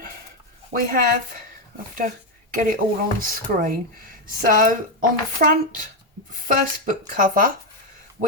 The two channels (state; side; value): normal; both; correlation 0.06